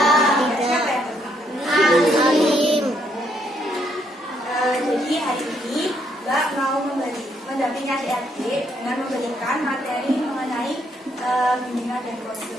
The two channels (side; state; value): both; normal; correlation 0.72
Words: Siapa yang berangkat? Alim. Jadi hari ini Mbak mau mendampingi adik-adik dengan memberikan materi mengenai bimbingan dan